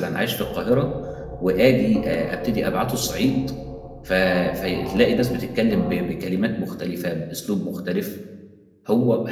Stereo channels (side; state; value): both; identical; correlation 1.00